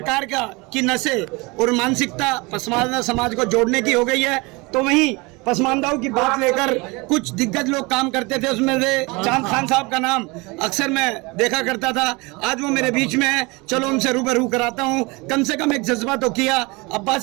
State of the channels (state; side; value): quieter; left; 25.8 dB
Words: की नसें और मानसिकता पसमानदा समाज को जोड़ने की हो गई है, तो वहीं पसमानदाओं की बात लेकर कुछ दिग्गज लोग काम करते थे। उसमें से चांद खान साहब का नाम अक्सर मैं देखा करता था। आज वो मेरे बीच में है, चलो उनसे रूबरू कराता हूँ। कम से कम एक जज्बा तो किया,